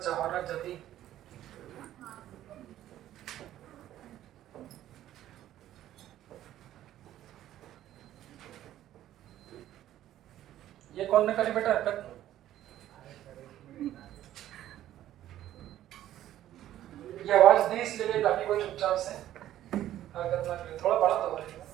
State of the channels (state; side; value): quieter; left; 12.8 dB